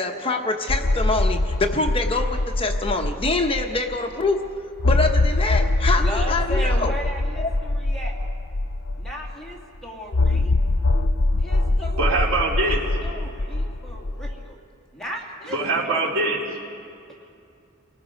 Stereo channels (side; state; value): both; normal; correlation 0.62